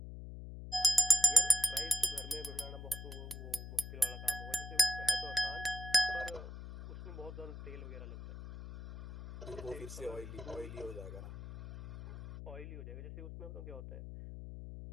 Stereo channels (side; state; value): left; noise; hum, 10 dB below the sound